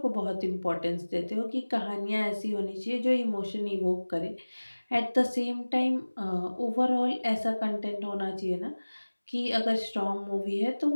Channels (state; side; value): inverted; both; correlation -1.00